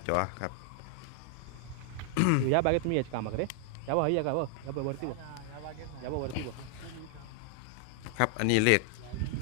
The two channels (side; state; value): both; different; correlation 0.00